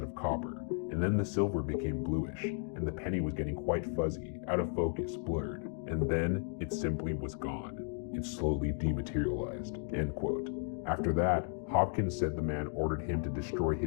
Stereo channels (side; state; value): right; silent; 55 dB below the other